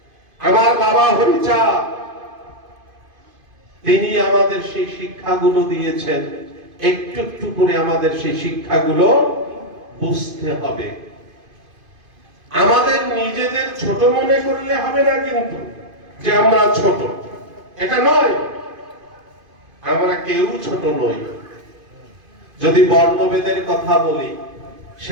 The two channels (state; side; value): late; left; 2.5 ms